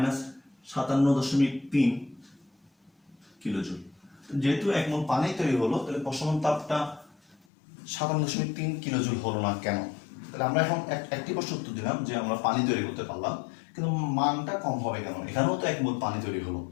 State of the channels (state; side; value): drops out; right; at 7.4 s